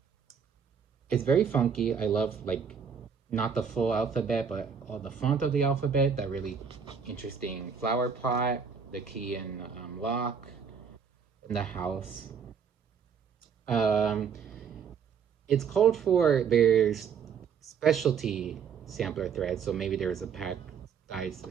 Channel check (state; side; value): quieter; left; 6.7 dB